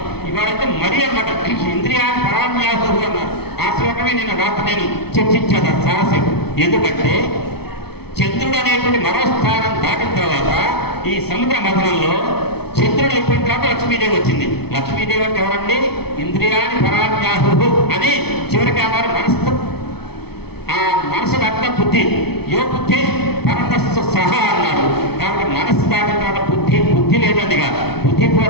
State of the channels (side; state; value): right; late; 0.97 ms